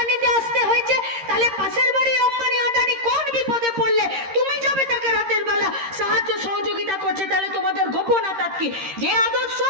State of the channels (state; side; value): late; left; 13 ms